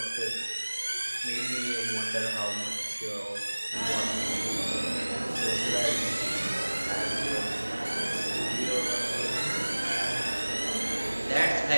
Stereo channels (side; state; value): both; inverted; correlation -1.00